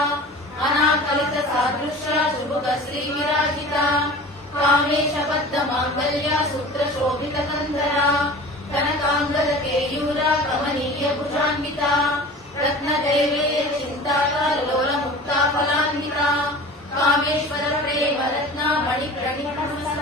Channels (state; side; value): normal; both; correlation 0.39